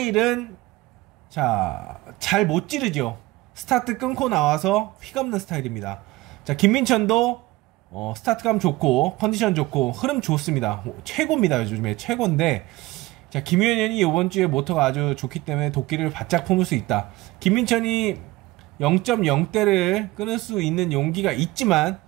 자, 잘 못 찌르죠. 스타트 끊고 나와서 휘감는 스타일입니다. 자, 김민천도 스타트감 좋고 컨디션 좋고 흐름 좋습니다. 최고입니다. 요즘에 최고인데, 자, 김연현이 이번 주에 모터가 아주 좋기 때문에 도끼를 바짝 품을 수 있다. 김민천이 0.0대를 끊을 수 있는 용기가 있지만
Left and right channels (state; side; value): quieter; left; 19.7 dB